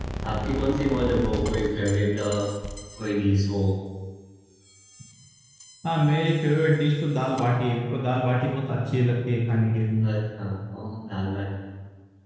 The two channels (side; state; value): both; identical; correlation 1.00